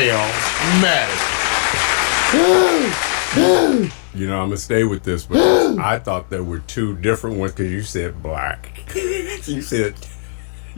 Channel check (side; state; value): right; silent; digital silence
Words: mannequin. You know, I'm gonna stay with this, but I thought there were two different ones because you said black. you said